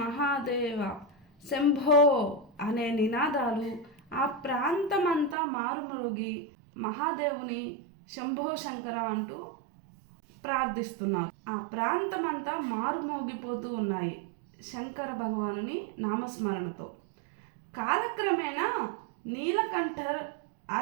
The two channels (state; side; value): drops out; left; at 5.4 s